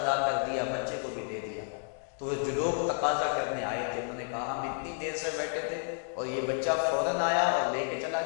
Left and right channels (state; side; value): silent; right; 57 dB below the other